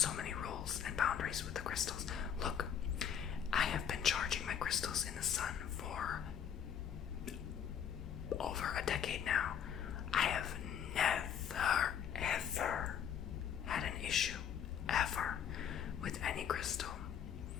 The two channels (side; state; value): right; quieter; 8.4 dB